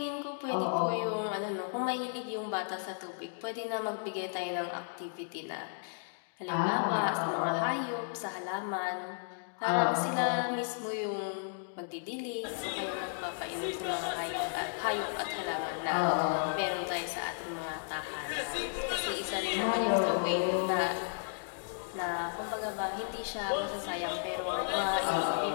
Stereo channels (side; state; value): right; silent; digital silence